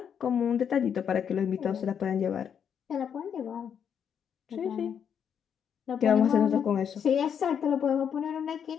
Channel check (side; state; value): right; quieter; 7.9 dB